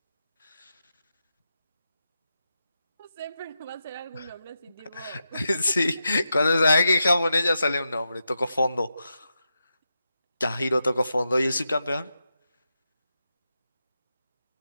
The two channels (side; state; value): both; inverted; correlation -0.88